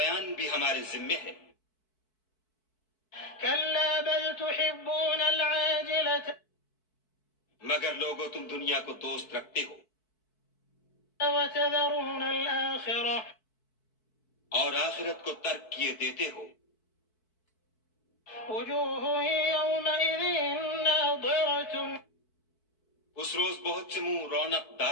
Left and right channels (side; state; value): right; late; 4.6 ms